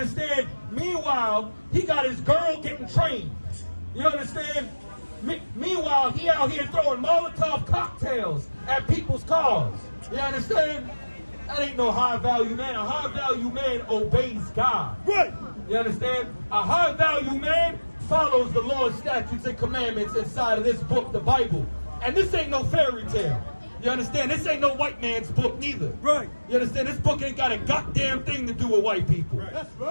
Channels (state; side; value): inverted; both; correlation -1.00